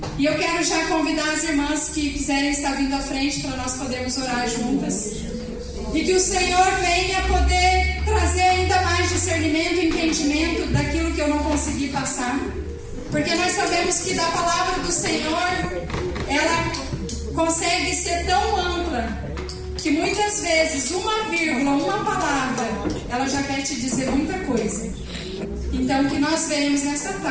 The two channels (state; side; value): identical; both; correlation 1.00